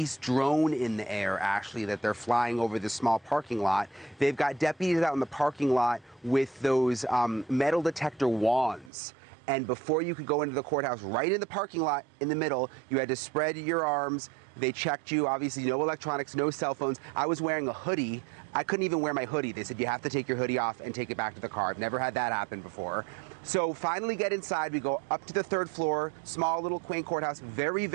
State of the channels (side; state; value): left; drops out; at 8.9 s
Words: drone in the air, actually, that they're flying over the small parking lot. They've got deputies out in the parking lot with those metal detector wands. And before you could go into the courthouse, right in the parking lot in the middle, you had to spread your arms. They checked you, obviously no electronics, no cell phones. I was wearing a hoodie. I couldn't even wear my hoodie. They said you have to take your hoodie off and take it back to the car. I've never had that happen before. So finally get inside. We go up to the third floor, small little quaint courthouse, very,